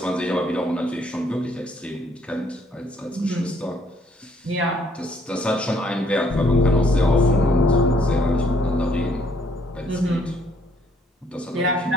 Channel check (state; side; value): normal; both; correlation 0.65